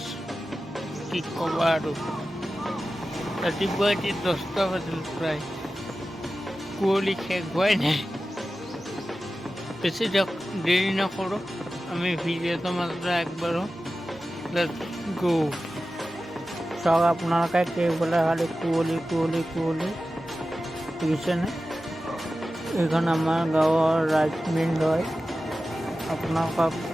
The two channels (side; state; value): both; normal; correlation 0.94